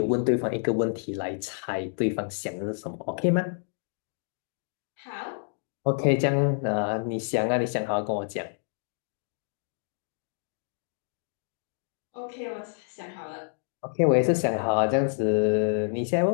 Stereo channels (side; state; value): right; silent; digital silence